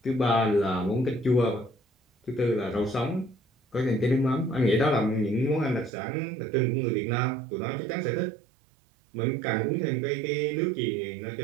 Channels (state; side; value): drops out; left; at 5.9 s